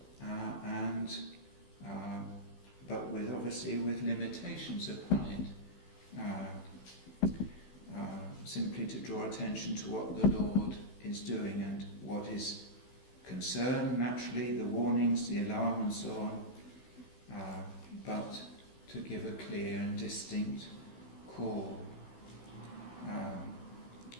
but with limitations upon it. Simply to draw attention to what the Lord is doing and what is concerned, naturally, the warnings, the alarm and so on, but to give a clear and distinct call.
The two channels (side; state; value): right; late; 16 ms